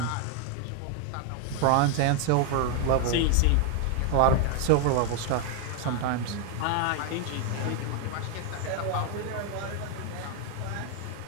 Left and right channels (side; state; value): both; different; correlation 0.01